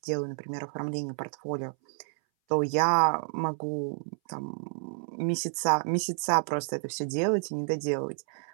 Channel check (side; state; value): left; silent; 58 dB below the other